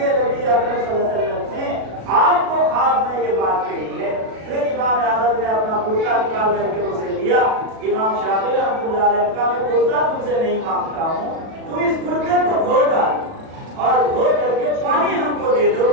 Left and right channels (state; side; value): late; left; 37 ms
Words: نبی اکرم صلی اللہ علیہ وسلم نے آپ کو خواب میں یہ بات کہی ہے. پھر امام احمد نے اپنا کرتا نکال کر کے اسے دیا. امام شافعی رحمۃ اللہ علیہ کا میں کرتا تم سے نہیں مانگتا ہوں، تم اس کرتے کو دھو ڈال اور دھو کر کے پانی ہم کو دے دو.